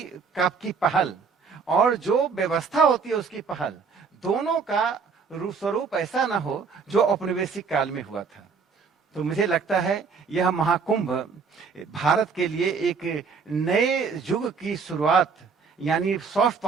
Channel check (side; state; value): left; quieter; 5.4 dB